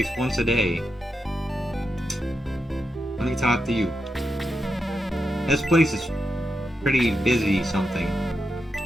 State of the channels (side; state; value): both; normal; correlation 0.86